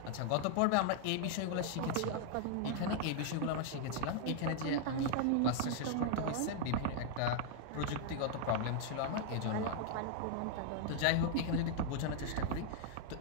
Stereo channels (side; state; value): both; different; correlation 0.00